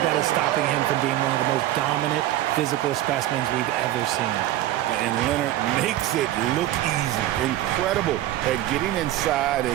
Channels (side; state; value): left; quieter; 14.1 dB